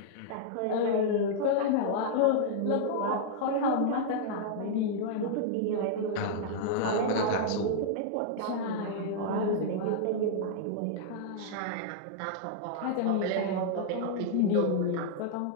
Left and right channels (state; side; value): different; both; correlation -0.01